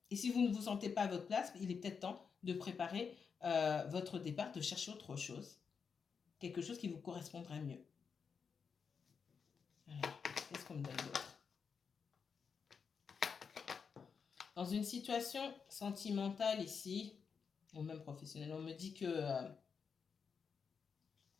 Et si vous ne vous sentez pas à votre place, il est peut-être temps de préparer votre départ, de chercher autre chose. Quelque chose qui vous correspondrait mieux. Alors, Qu'est-ce qu'on me donne d'autre? Dans une situation sentimentale ici, ou même professionnelle, on me dit que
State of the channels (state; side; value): quieter; right; 6.0 dB